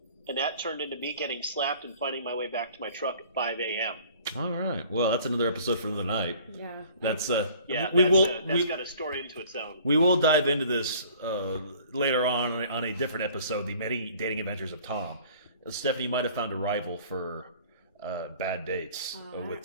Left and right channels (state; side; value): inverted; both; correlation -0.51